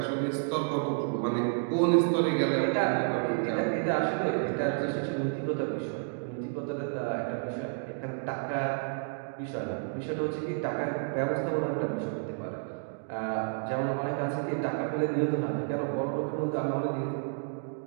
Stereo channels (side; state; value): left; silent; digital silence